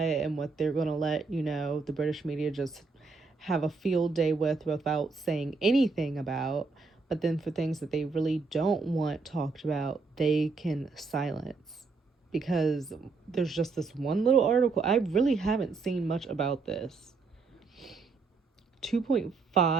what they're going to let, you know, the British media just have a field day with without saying anything about. But then for things that they really don't want talked about, they can silence. because there's just this one little article. I really haven't seen much about this.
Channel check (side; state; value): left; quieter; 4.2 dB